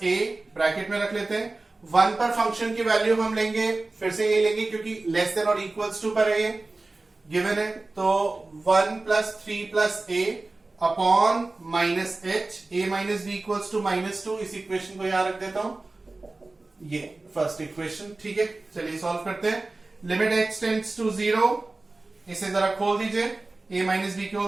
a, bracket में रख लेते हैं। 1 पर फंक्शन की वैल्यू हम लेंगे, फिर से ये लेंगे क्योंकि लेस देन और इक्वल्स टू पर है ये गिवन है, तो 1 plus 3 plus a upon minus h, a minus b equals to minus 2। इस इक्वेशन को यहां रख देता हूं, ये फर्स्ट इक्वेशन। ठीक है, चलिए सॉल्व करते हैं। लिमिट h टेंड्स टू 0, इसे जरा खोल दीजिए, a माइनस बी के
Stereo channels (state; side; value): quieter; left; 3.2 dB